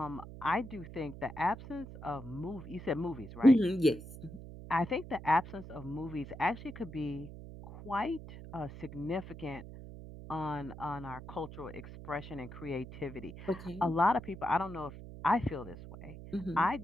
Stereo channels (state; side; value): noise; right; hum, 13 dB below the sound